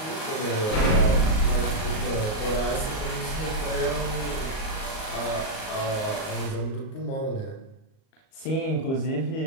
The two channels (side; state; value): right; late; 38 ms